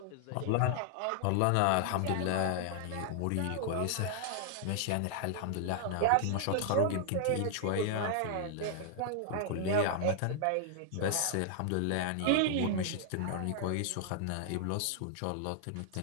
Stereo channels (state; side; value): different; both; correlation 0.00